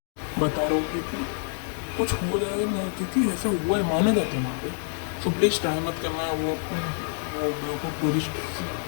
बता रहा हूँ क्योंकि कुछ हो जाए ना, क्योंकि ऐसा हुआ है, माने जाते हैं वहाँ पे। सो प्लीज़ ट्राई मत करना है। वो बेवकूफ़ टूरिस्ट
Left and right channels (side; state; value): right; silent; 60 dB below the other